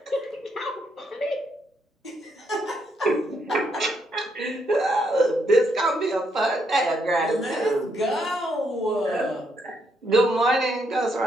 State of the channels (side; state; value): both; normal; correlation 0.76